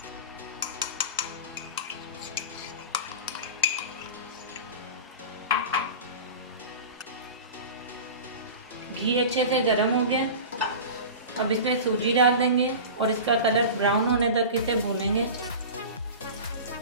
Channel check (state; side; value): inverted; both; correlation -0.33